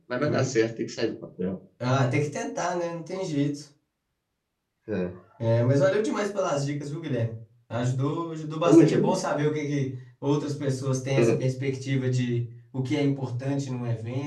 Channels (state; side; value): identical; both; correlation 1.00